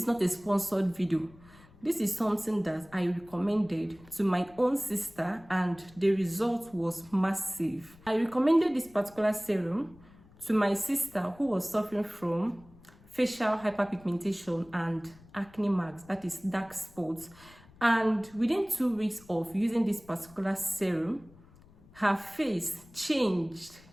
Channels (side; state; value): left; noise; rumble, 25 dB below the sound